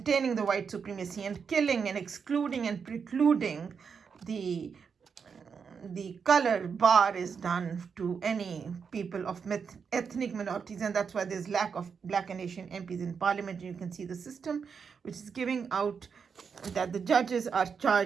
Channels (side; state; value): left; quieter; 6.2 dB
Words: the white supremacy and killing and excluding and precluding the color bar is done to any people of ethnic minorities, and that's why there's lack of Black and Asian MPs in Parliament. You can see the system which is giving out that the judges are